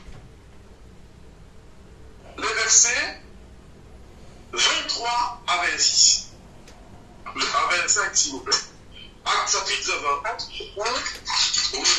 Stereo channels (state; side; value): identical; both; correlation 1.00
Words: Les versets 23 à 26. À 25, s'il vous plaît. Acte chapitre 20.